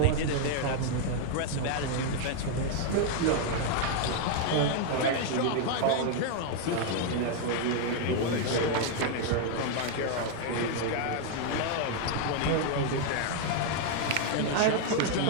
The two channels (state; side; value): different; both; correlation 0.00